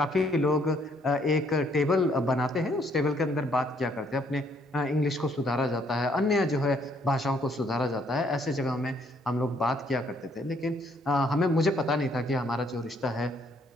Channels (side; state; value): both; normal; correlation 0.67